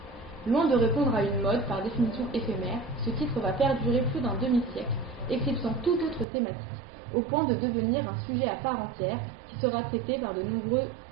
Loin de répondre à une mode par définition éphémère, ce titre va perdurer plus d'un demi-siècle, éclipsant toute autre thématique, au point de devenir un sujet à part entière qui sera traité par de nombreux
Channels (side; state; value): left; drops out; at 6.2 s